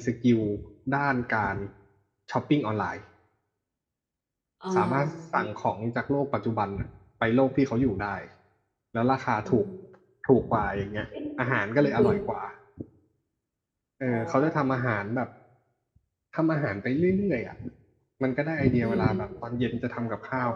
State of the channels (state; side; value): identical; both; correlation 1.00